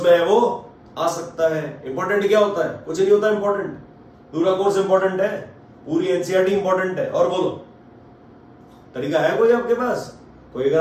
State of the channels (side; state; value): both; identical; correlation 1.00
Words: में है वो आ सकता है। इंपॉर्टेंट क्या होता है? कुछ नहीं होता इंपॉर्टेंट, पूरा कोर्स इंपॉर्टेंट है, पूरी एनसीईआरटी इंपॉर्टेंट है। और बोलो, तरीका है कोई आपके पास? कोई अगर